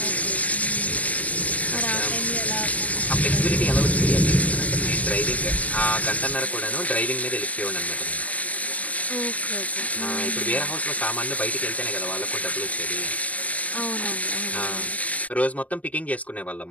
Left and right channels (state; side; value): late; right; 0.075 ms